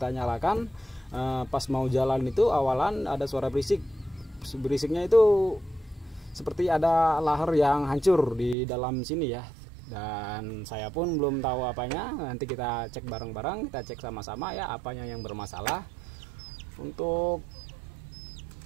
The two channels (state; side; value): drops out; left; at 8.6 s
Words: nyalakan. Pas mau jalan itu awalan ada suara berisiknya itu seperti ada lahar yang hancur di dalam sini ya. Dan saya pun belum tahu apanya, nanti kita cek bareng-bareng, kita cek sama-sama ya apanya yang bermasalah. Untuk